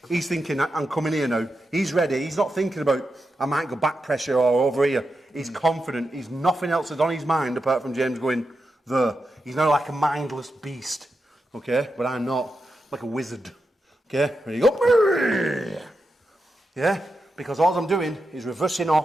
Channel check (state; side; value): normal; both; correlation 0.88